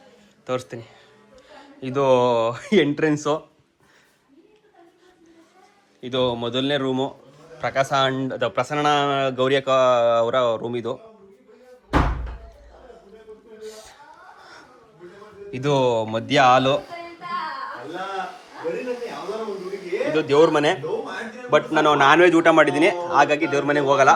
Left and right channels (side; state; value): both; identical; correlation 1.00